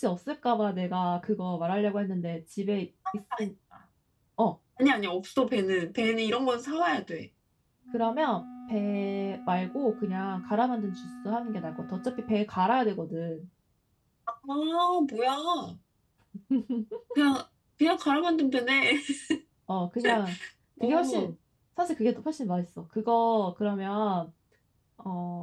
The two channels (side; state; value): both; identical; correlation 1.00